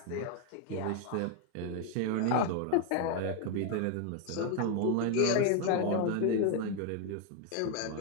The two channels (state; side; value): different; both; correlation 0.01